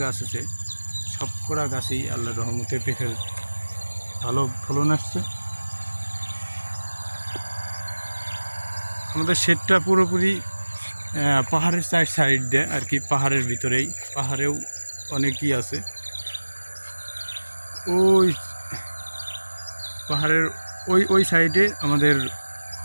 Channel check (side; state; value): both; inverted; correlation -1.00